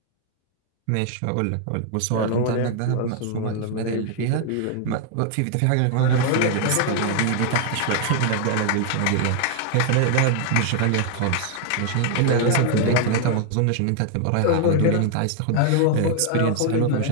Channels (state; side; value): different; both; correlation 0.00